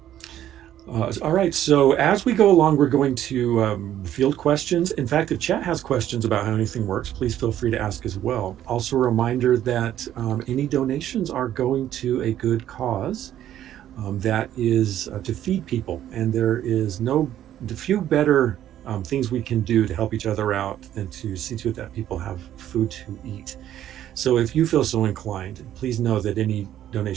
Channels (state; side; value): quieter; left; 11.7 dB